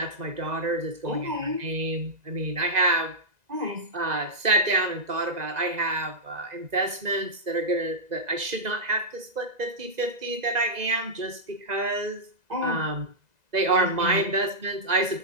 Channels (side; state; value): left; late; 2.0 ms